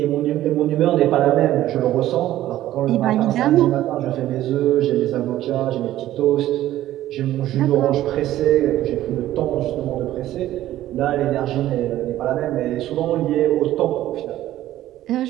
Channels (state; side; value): quieter; left; 13.9 dB